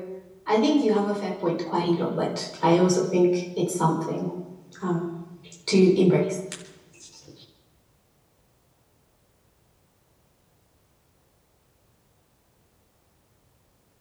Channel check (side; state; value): both; identical; correlation 1.00